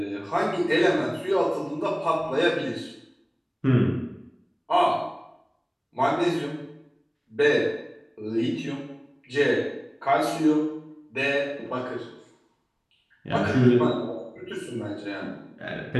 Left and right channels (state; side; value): identical; both; correlation 1.00